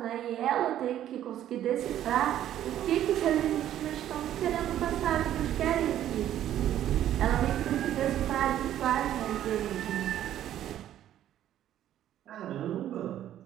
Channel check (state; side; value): quieter; left; 11.7 dB